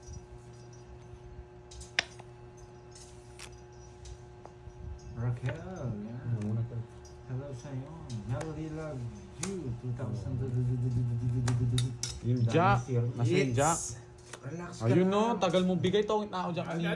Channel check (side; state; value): both; identical; correlation 1.00